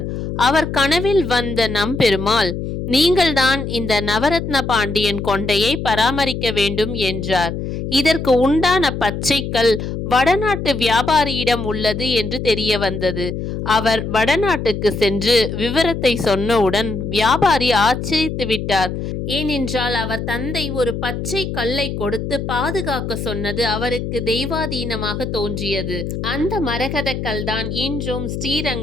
அவர் கனவில் வந்த நம் பெருமாள், நீங்கள்தான் இந்த நவரத்ன பாண்டியன் கொண்டையை பராமரிக்க வேண்டும் என்றார். இதற்கு உண்டான பச்சைக்கல் வடநாட்டு வியாபாரியிடம் உள்ளது என்று தெரிய வந்தது. அவர் வடநாட்டுக்கு சென்று விவரத்தை சொன்னவுடன் வியாபாரி ஆச்சரித்து விட்டார். ஏனென்றால் அவர் தந்தை ஒரு பச்சை கல்லை கொடுத்து பாதுகாக்க சொன்னது அவருக்கு தெய்வாதீனமாக தோன்றியது. அந்த மரகத கல்தான் இன்றும்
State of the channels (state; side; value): noise; left; hum, 5 dB below the sound